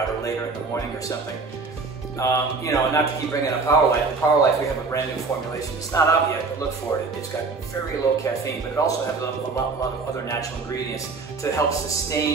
or later in the morning or something. You know, not to keep bringing up Power Life. In Power Life, we have a brand new formulation. It's not out yet, but look for it. It's got very low caffeine, but it also has a lot of other natural ingredients to help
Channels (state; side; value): quieter; left; 4.2 dB